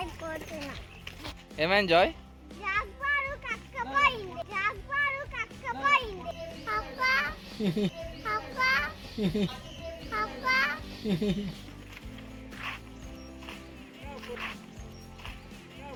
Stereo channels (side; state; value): both; identical; correlation 1.00